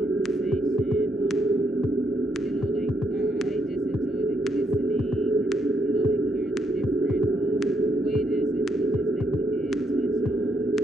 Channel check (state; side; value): normal; both; correlation 0.76